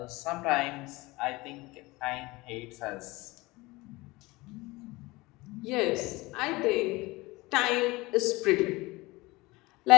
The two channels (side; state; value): right; quieter; 21.9 dB